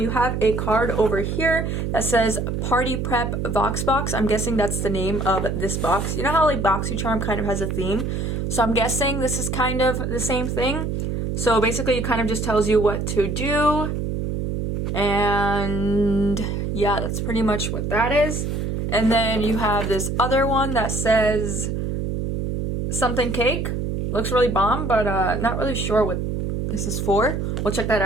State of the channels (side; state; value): right; noise; hum, 2 dB below the sound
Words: have a card over here that says Party Prep Vox Box. I'm guessing that's the name of this box. You know how like BoxyCharm kind of has a theme? So I'm guessing this is kind of the same thing. So basically it kind of just tells you what to do. And yeah, that's pretty much what that is. And then you have this other one that says something cake. Looks really bomb, but not really sure what this is for. We'll check that